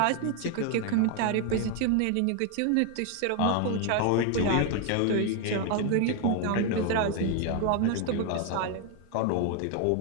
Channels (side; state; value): both; different; correlation 0.01